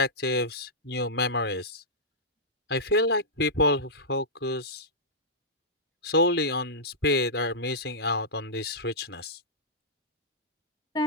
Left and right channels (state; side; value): normal; both; correlation -0.13